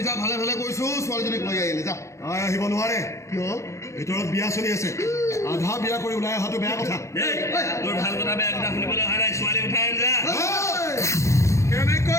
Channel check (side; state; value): right; late; 0.14 ms